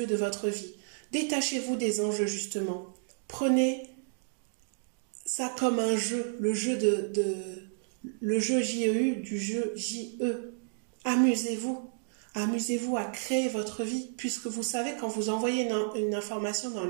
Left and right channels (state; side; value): silent; left; digital silence